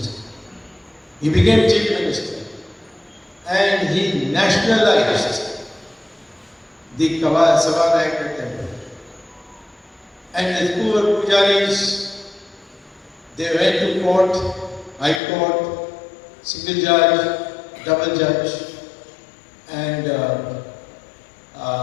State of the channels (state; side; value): drops out; right; at 15.2 s